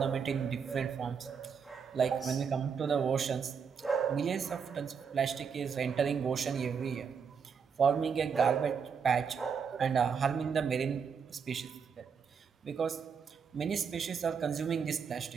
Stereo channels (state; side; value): quieter; left; 6.4 dB